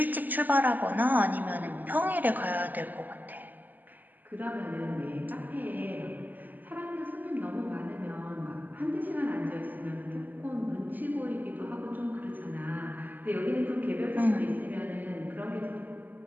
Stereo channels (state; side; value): late; left; 0.085 ms